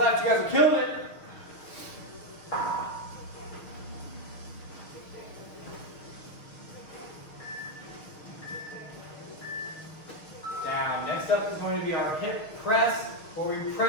You guys have killed it. Down. Next up is going to be our hip press. where we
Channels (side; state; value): right; late; 6.4 ms